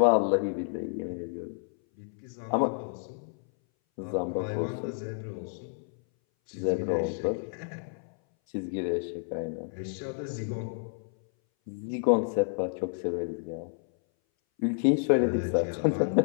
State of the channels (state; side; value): silent; right; 58 dB below the other